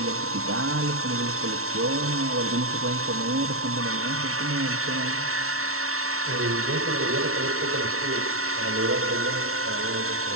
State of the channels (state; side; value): late; left; 0.63 ms